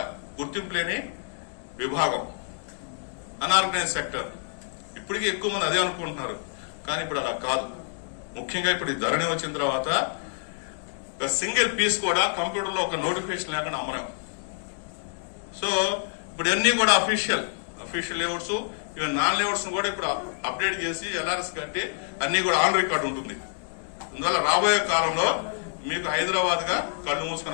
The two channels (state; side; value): silent; right; digital silence